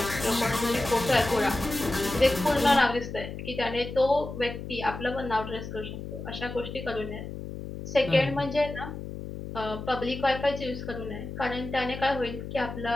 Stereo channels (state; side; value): noise; left; hum, 9 dB below the sound